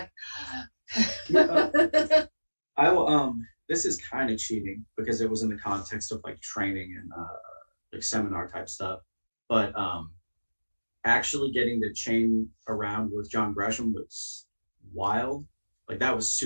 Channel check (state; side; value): inverted; both; correlation -1.00